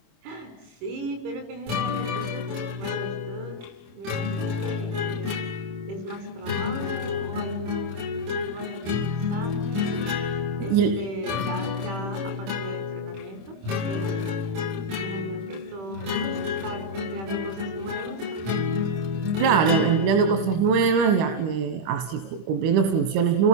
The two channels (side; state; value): left; late; 26 ms